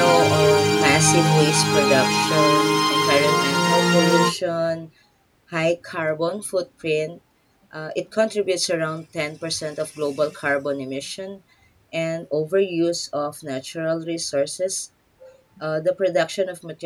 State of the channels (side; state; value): both; identical; correlation 1.00